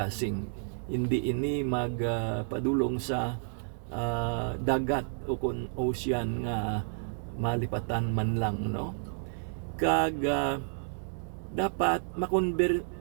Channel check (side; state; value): left; silent; digital silence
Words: hindi ini magpadulong sa dagat o kun ocean nga malipatan man lang, no? Kag dapat